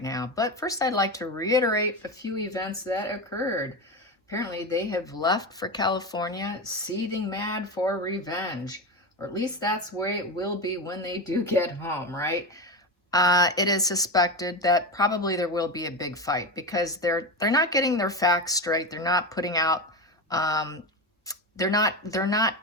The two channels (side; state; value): both; normal; correlation 0.19